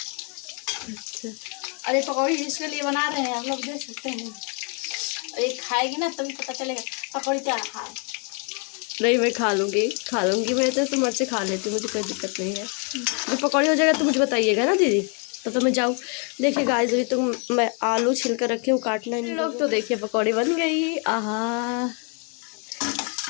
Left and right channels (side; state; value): right; quieter; 37.8 dB